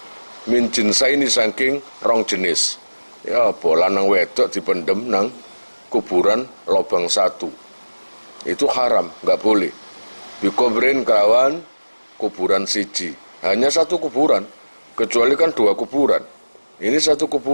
min jinsaini saking rong jenis. Ya apa lanang wedok dipendem nang kuburan lobang satu. Itu haram, enggak boleh. Dikubrin kelawan kuburan siji. Hanya satu kuburan, kecuali kan dua kuburan. Ini satu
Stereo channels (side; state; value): both; inverted; correlation -1.00